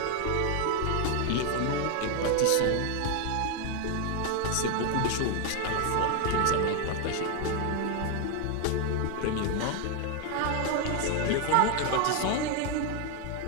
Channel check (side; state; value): both; different; correlation 0.01